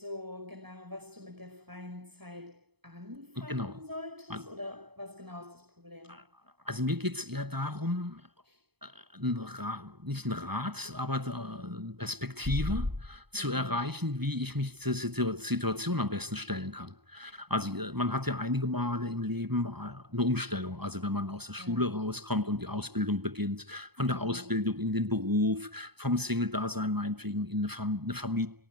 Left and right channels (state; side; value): late; left; 0.98 ms